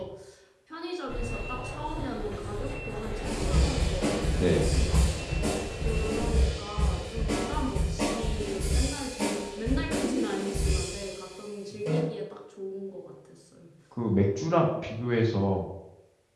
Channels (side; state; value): both; identical; correlation 1.00